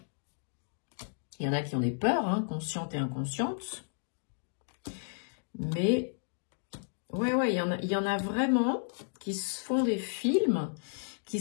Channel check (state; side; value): silent; right; digital silence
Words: Il y en a qui ont des peurs, hein, conscientes et inconscientes. Mais, ouais, il y en a vraiment qui se font des films, qui